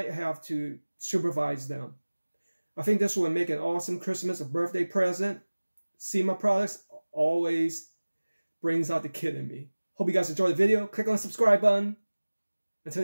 have to supervise them. I think this will make an awesome Christmas or birthday present. Syma products always brings out the kid in me. Hope you guys enjoyed the video. Click on the subscribe button. Until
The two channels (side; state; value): both; inverted; correlation -1.00